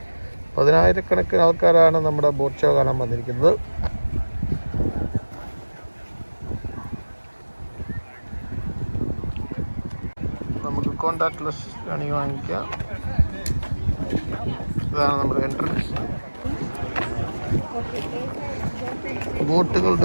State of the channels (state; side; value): inverted; both; correlation -1.00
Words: പതിനായിരക്കണക്കിന് ആൾക്കാരാണ് നമ്മുടെ ബോട്ട് ഷോ കാണാൻ വന്നിരിക്കുന്നത്. നമുക്ക് കോണ്ടാക്ട്ലെസ് ആണ് വാങ്ങിക്കാം. ഇതാണ് നമ്മുടെ എൻട്രൻസ്.